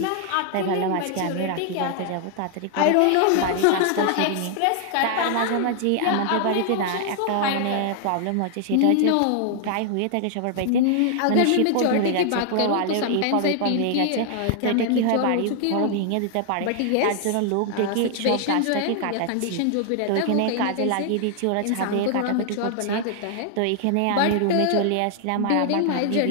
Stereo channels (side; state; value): both; different; correlation 0.00